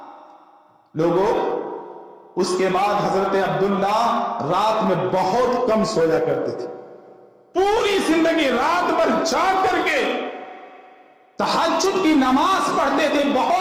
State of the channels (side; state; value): both; identical; correlation 1.00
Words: لوگوں، اس کے بعد حضرت عبداللہ رات میں بہت کم سویا کرتے تھے. پوری زندگی رات بھر جاگ کر کے تہجد کی نماز پڑھتے تھے،